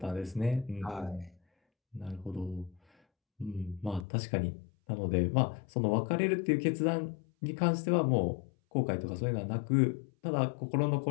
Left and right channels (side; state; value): right; drops out; at 4.0 s